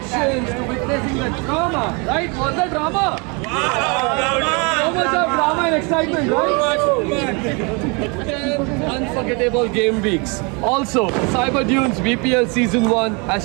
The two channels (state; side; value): quieter; left; 31.4 dB